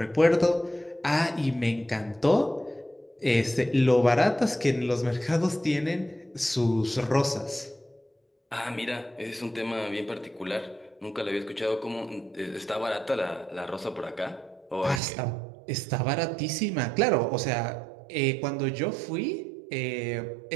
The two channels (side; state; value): left; drops out; at 15.0 s